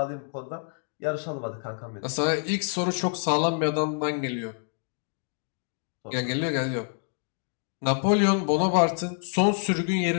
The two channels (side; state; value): right; silent; 60 dB below the other